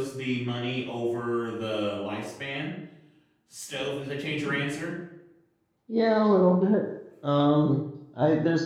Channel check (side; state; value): both; identical; correlation 1.00